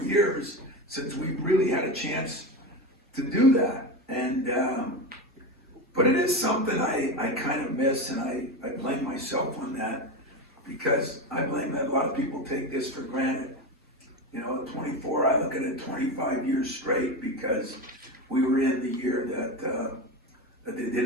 since we really had a chance to do that. And but it is something I kind of miss, and I blame myself on that, because I blame that a lot of people take this for granted. You know, 24, I look at it 25 years straight, because we were in the year that they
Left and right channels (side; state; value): both; normal; correlation 0.20